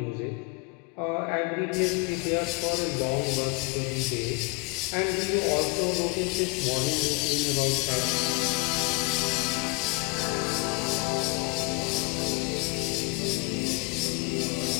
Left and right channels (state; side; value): quieter; right; 28.6 dB